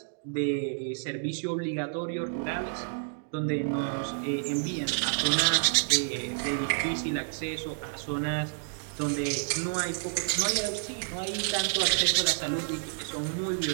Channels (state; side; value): silent; left; digital silence